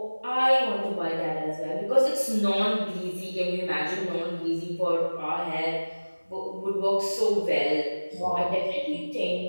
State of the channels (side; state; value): both; inverted; correlation -1.00